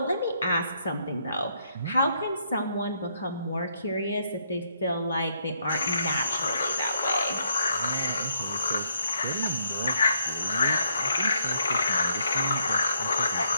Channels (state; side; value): inverted; both; correlation -0.73